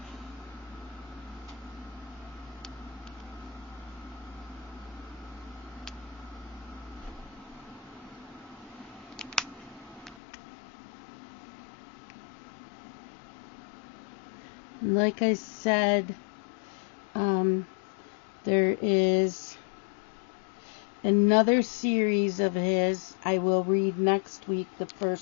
Like I said, there is another series of his. I will read next week, the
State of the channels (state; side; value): drops out; right; at 10.2 s